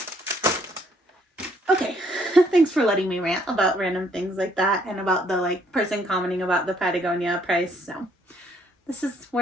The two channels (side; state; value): both; normal; correlation 0.67